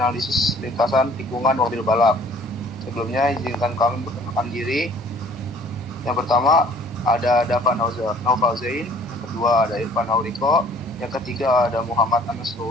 Lintasan Tikungan Mobil Balap. Sebelumnya izinkan kami memperkenalkan diri. Yang pertama ada Dava Naufazain, yang kedua ada Irfan Auriko, yang ketiga ada Muhammad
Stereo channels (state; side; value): normal; both; correlation 0.54